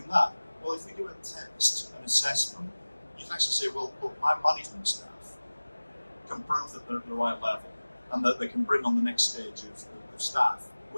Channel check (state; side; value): inverted; both; correlation -1.00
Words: that? Well, if we do a test, an assessment, you can actually say, well, look, my management staff can prove that they're at the right level and that they can bring on the next stage of staff